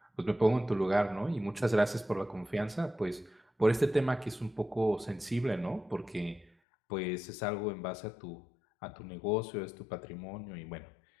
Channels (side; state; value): right; drops out; at 6.5 s